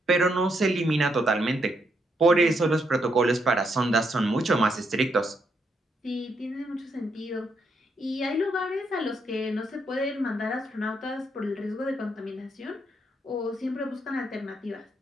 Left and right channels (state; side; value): normal; both; correlation 0.77